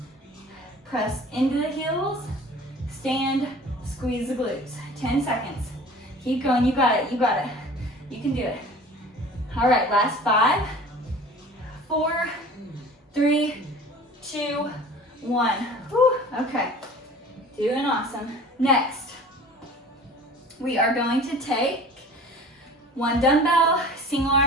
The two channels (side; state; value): both; normal; correlation 0.43